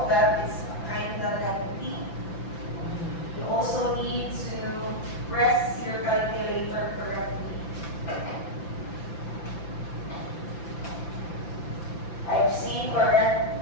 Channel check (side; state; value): right; late; 5.9 ms